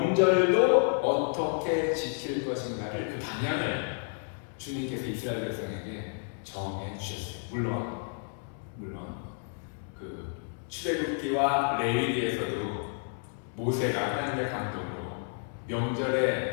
어떻게 지킬 것인가를 그 방향을 주님께서 이스라엘 백성에게 정해 주셨어요. 물론 그 출애굽기와 레위기에서도 모세가 하나님의 감동으로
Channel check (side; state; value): right; silent; 57 dB below the other